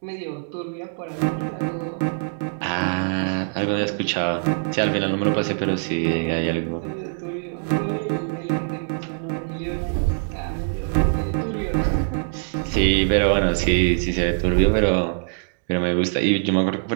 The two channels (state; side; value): silent; left; digital silence